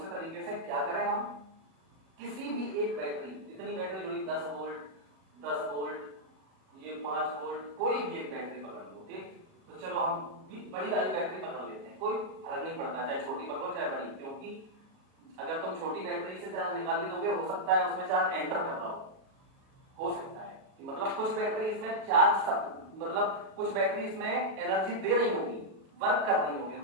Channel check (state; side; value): late; left; 37 ms